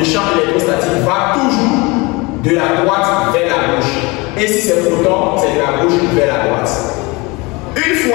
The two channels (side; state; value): right; quieter; 25.5 dB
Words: champ électrostatique va toujours de la droite vers la gauche. Et si c'est proton, c'est de la gauche vers la droite. Une